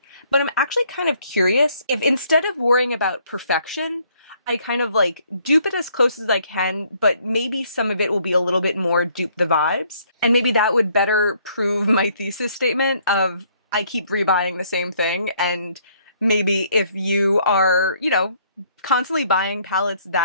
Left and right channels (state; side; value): inverted; both; correlation -0.65